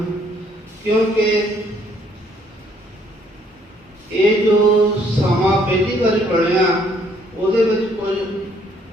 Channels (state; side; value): normal; both; correlation 0.65